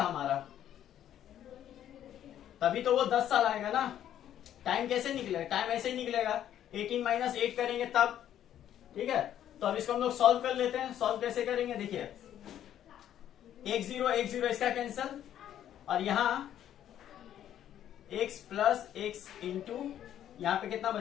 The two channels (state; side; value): quieter; right; 10.9 dB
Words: हमारा, तभी तो वो 10 साल आएगा ना। टाइम कैसे निकलेगा, टाइम ऐसे ही निकलेगा 18 माइनस 8 करेंगे तब, ठीक है। तो अब इसको हम लोग सॉल्व कर लेते हैं, सॉल्व कैसे करेंगे देखिए, 1 0 इसका कैंसल, और यहां x प्लस एक्स इंटू यहां पे कितना